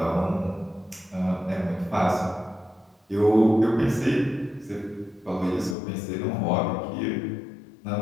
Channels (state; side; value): drops out; right; at 5.8 s